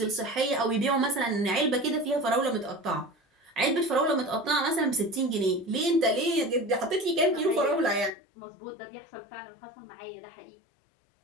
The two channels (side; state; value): right; drops out; at 8.1 s